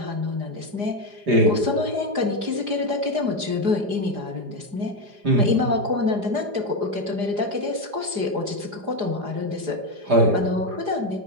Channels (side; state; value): left; late; 4.9 ms